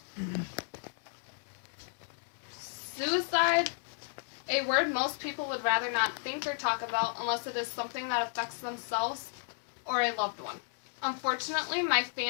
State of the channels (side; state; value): right; silent; digital silence